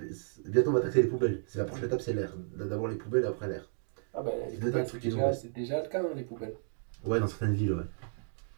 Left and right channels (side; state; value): left; silent; digital silence